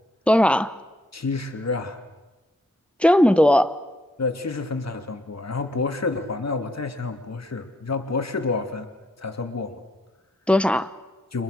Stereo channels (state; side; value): normal; both; correlation 0.74